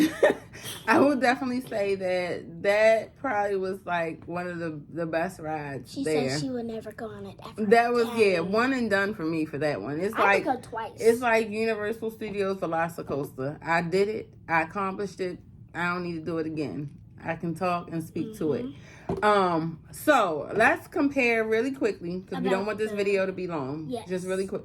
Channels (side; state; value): both; identical; correlation 1.00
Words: I will definitely say that probably was like one of the best rides. She there. said she would never go on it ever. That was one and done for me for that one. It's I could go twice. It's like Universal Studios Velocicoaster. I did it. I accomplished it. I don't need to do it again. I can talk and speak to it. So let's compare really quickly because we don't want this video to be long. Yes. Just really